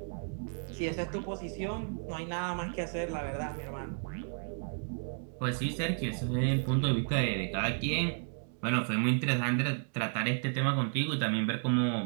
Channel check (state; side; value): silent; left; 56 dB below the other